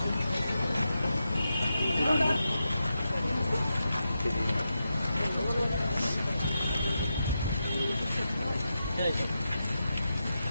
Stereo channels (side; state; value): both; inverted; correlation -0.88